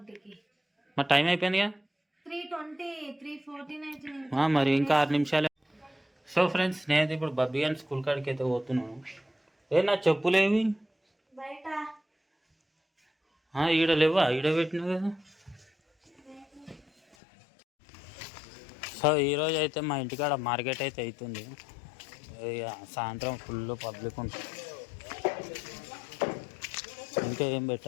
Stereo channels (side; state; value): right; drops out; at 17.2 s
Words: మరి టైం అయిపోయిందిగా. 3:20, 3:14 అవుతుంది. మరి ఇంకా 6 నిమిషాలే. సో ఫ్రెండ్స్, నేనైతే ఇప్పుడు బబ్బీ అని స్కూల్ కాడికి అయితే పోతున్నాను. నా చెప్పులేవి బయట ఈడ లేవా? ఈడ పెట్టినా కదా. సో ఈరోజు అయితే మా ఇంటికాడ మార్కెట్ అయితే అవుతుంది. సాయంత్రం ఫుల్ పబ్లిక్ ఉంటుంది. ఇంకా ఏం